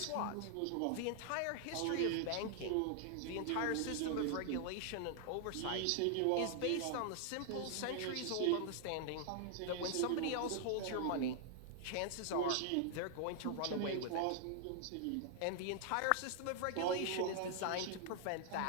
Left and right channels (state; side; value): different; both; correlation 0.00